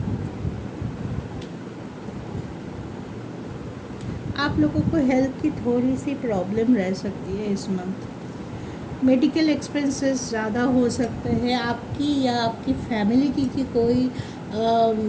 आप लोगों को हेल्थ की थोड़ी सी प्रॉब्लम रह सकती है इस मंथ। मेडिकल एक्सपेंसेस ज़्यादा हो सकते हैं आपकी या आपकी फैमिली की कोई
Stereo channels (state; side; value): identical; both; correlation 1.00